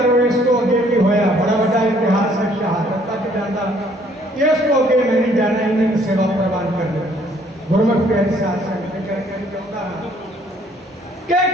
इसको अगे भी होया बड़ा बड़ा इतिहास है, शहादत तक जाता। इसको अगे मैं नहीं जाना, इन्हें सेवा प्रवान कर दो। गुरमुख प्यारे शासन करके चाहता कि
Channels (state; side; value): normal; both; correlation 0.62